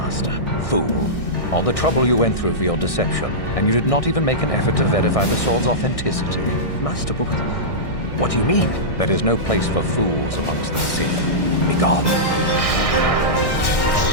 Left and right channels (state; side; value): late; right; 1.6 ms